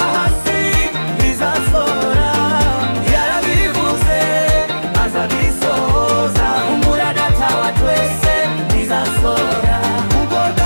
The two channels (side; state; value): both; inverted; correlation -1.00